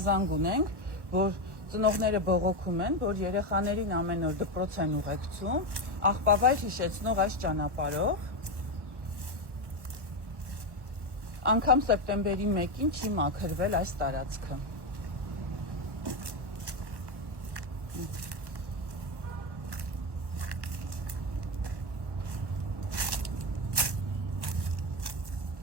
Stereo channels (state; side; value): late; left; 1.1 ms